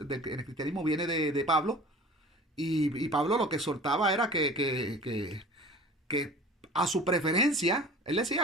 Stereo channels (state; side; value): normal; both; correlation 0.42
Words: el cristianismo viene de Pablo. Y Pablo lo que exhortaba era que a su preferencia, él